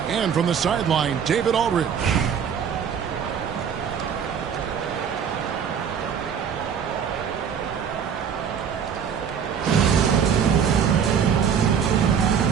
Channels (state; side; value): quieter; left; 7.5 dB